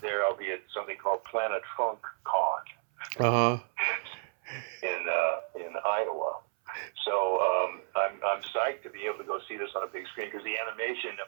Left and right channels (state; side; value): silent; left; 57 dB below the other